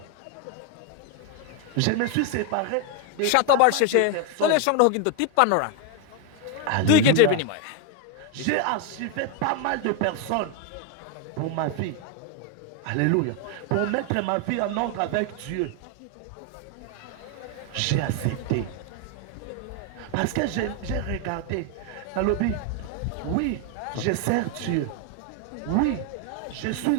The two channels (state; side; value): different; both; correlation 0.01